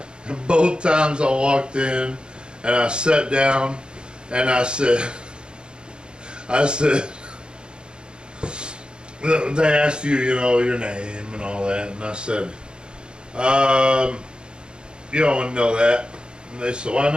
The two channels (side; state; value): left; late; 0.050 ms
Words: And both times I walked in and I sat down and I said, they asked you, your name and all that, and I said, you don't want to know that. And they said, why